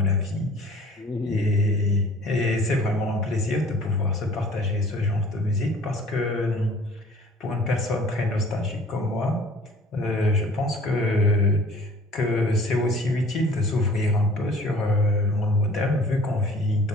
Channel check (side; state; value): both; normal; correlation 0.50